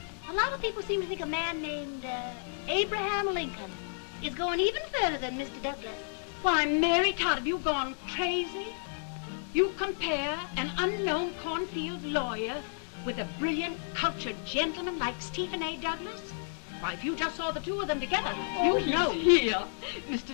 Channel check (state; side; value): silent; right; digital silence